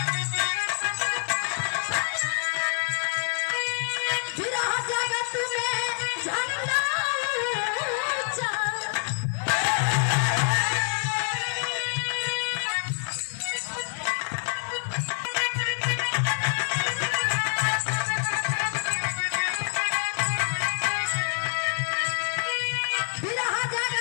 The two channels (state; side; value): silent; right; 60 dB below the other